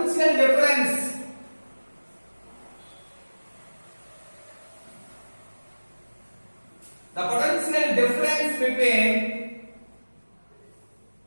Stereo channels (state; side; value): inverted; both; correlation -1.00